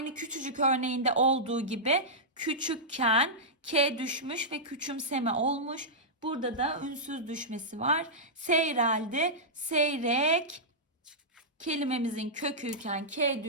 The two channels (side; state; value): both; normal; correlation -0.11